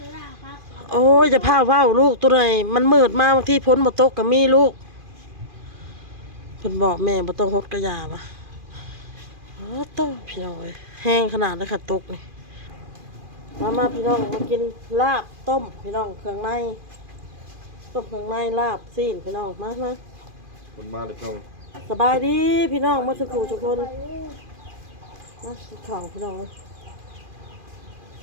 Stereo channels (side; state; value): left; late; 2.4 ms